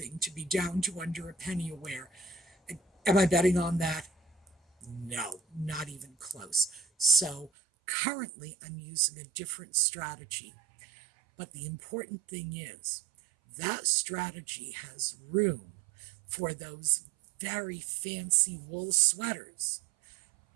to be down to under a penny a wear. Am I betting on that? No, not even close. So currently I'm using a different strategy. But the important thing is that strategy has room for those very fancy wool sweaters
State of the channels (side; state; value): left; drops out; at 7.5 s